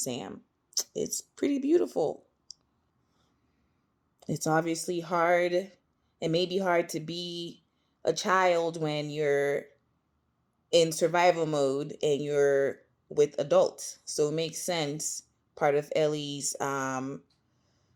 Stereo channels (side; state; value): both; identical; correlation 1.00